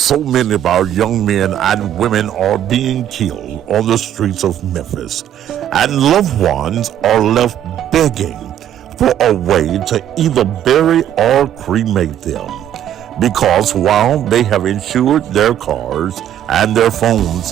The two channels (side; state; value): left; quieter; 10.8 dB